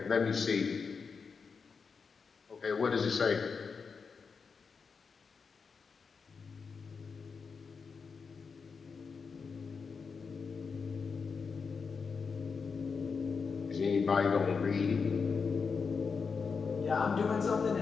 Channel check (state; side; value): quieter; right; 5.3 dB